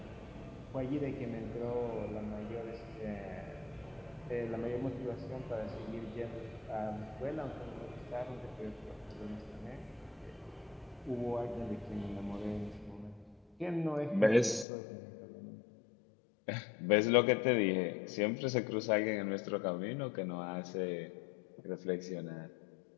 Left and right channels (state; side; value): drops out; right; at 14.7 s